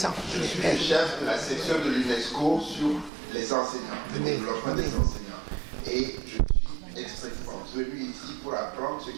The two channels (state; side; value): drops out; left; at 3.1 s